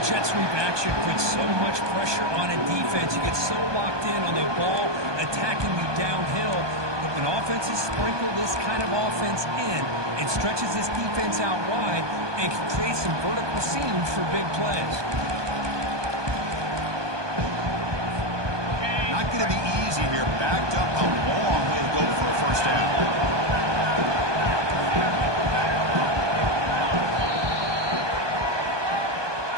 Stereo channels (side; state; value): left; late; 1.2 ms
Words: jet sweep action puts so much pressure on a defense. You get so locked in on the ball attacking you downhill. But when offenses sprinkle this kind of offense in, it stretches this defense out wide and can create some vertical seams for big plays. Not going to be easy here. Backed up a long way to go for a first down.